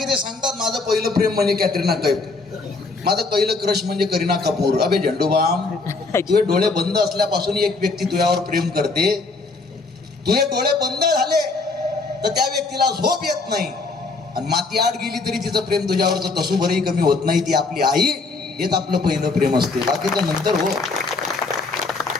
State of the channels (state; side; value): quieter; right; 3.7 dB